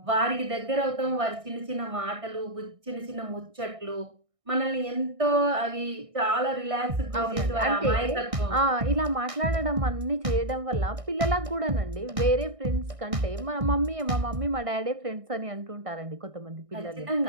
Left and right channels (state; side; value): late; left; 1.6 ms